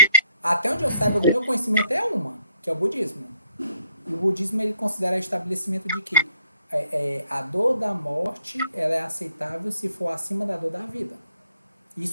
Até onde eu saiba, do meu conhecimento é uma, que é o budismo. E o budismo ele considera o estabelecimento de que a dor da morte ela é aceitável se for acima da dor da vida.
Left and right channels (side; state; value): both; inverted; correlation -0.71